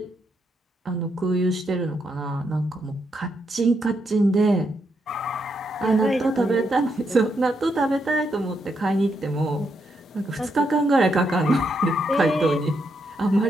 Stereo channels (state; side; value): normal; both; correlation 0.79